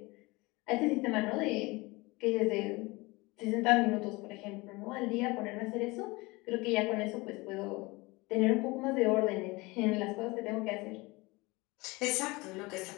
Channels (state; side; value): quieter; right; 23.5 dB